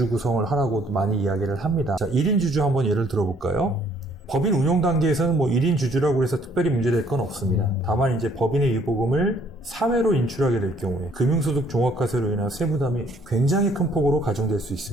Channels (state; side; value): normal; both; correlation 0.63